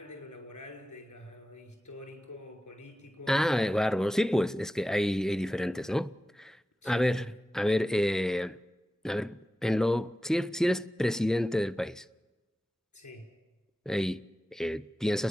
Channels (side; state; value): both; normal; correlation 0.95